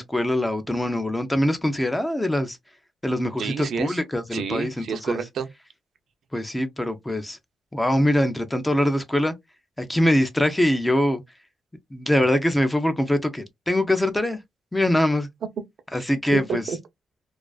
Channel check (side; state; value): both; normal; correlation 0.93